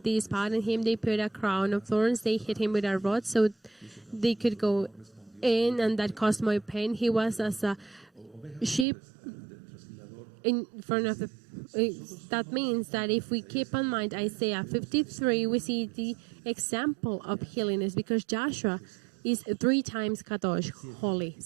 They spat on him. They put a crown of thorns. They hit him with a rod so they could go in, and that caused more pain. He was as a sheep in front of the... That means that if we keep in mind Isaiah 53, we see the example of healing is because Joshua is 3 times kadosh, holy.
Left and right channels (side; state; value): left; drops out; at 8.8 s